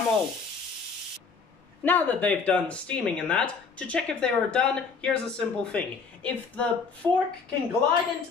old. Now that they've done steaming and that, to check if they are done, here's a simple thing. If the fork can glide into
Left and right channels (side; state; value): right; quieter; 5.1 dB